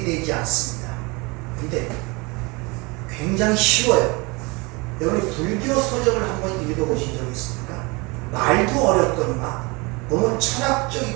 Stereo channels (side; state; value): left; quieter; 27.0 dB